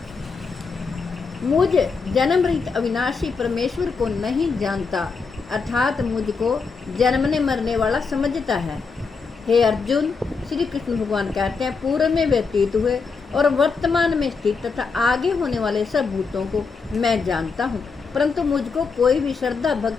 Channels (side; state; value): right; quieter; 4.9 dB